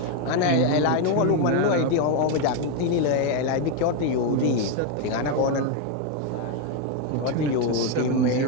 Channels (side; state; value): both; different; correlation 0.02